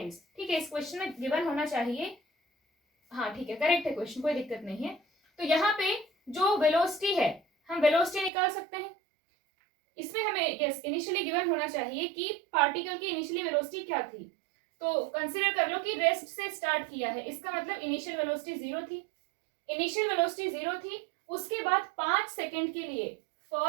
ठीक है, इस क्वेश्चन में given होना चाहिए, हाँ ठीक है, करेक्ट है क्वेश्चन, कोई दिक्कत नहीं है। तो यहाँ पे जो वेलोसिटी है, हम वेलोसिटी निकाल सकते हैं, इसमें हमें यस इनिशियली गिवन होना चाहिए कि पार्टिकल की इनिशियली वेलोसिटी क्या थी। तो कंसीडर कर लो कि रेस्ट से स्टार्ट किया है, इसका मतलब इनिशियल वेलोसिटी 0 थी, इनिशियल वेलोसिटी 0 थी, उसके बाद 5 सेकेंड के लिए,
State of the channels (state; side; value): drops out; left; at 8.3 s